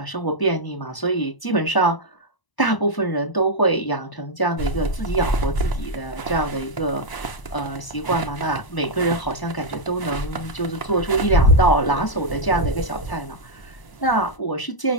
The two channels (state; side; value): late; right; 1.0 ms